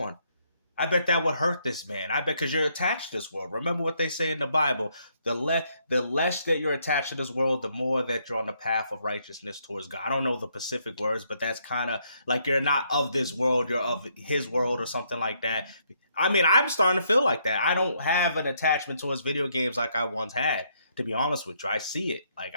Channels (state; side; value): inverted; both; correlation -0.72